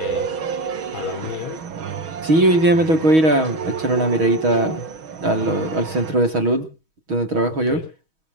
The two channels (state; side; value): late; left; 6.3 ms